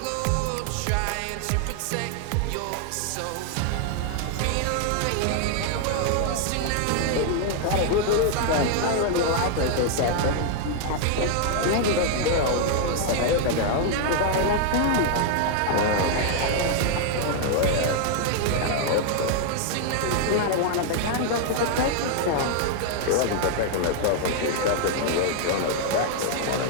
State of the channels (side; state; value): both; different; correlation 0.00